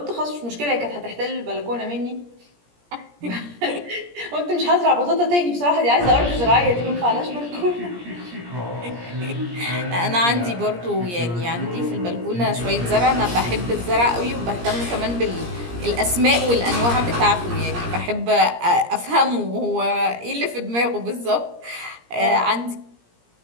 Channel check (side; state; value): left; late; 17 ms